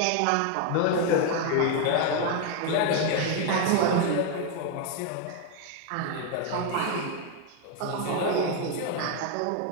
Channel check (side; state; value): both; different; correlation 0.01